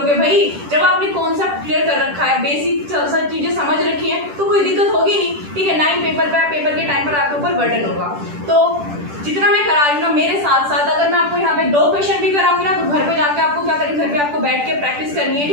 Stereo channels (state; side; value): late; left; 10 ms